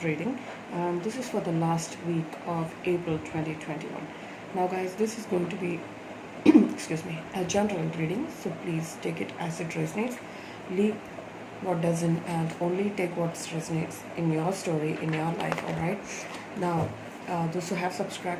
and this is for the last week of April 2021. Now guys, this is going to be excuse me, a general reading, so please take it as it resonates. Leave what doesn't and only take what resonates in your story, in your life, alright? Now, those who have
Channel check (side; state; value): both; identical; correlation 1.00